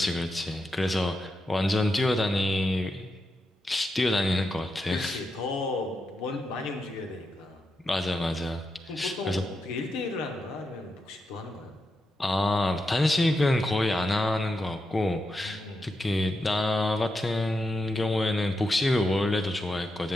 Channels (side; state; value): both; normal; correlation 0.86